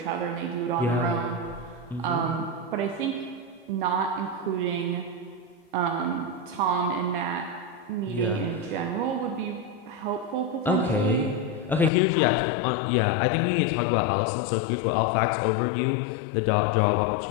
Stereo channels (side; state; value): right; drops out; at 11.9 s